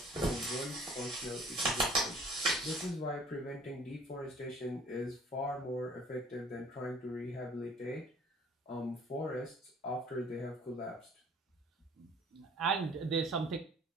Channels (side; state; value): both; normal; correlation 0.53